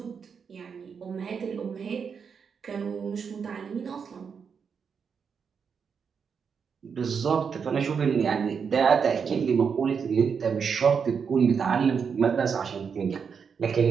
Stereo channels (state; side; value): quieter; left; 6.3 dB